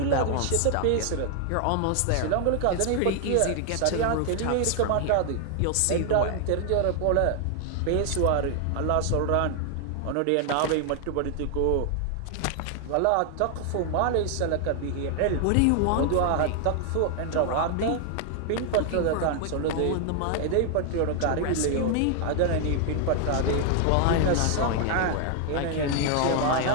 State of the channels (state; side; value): different; both; correlation 0.00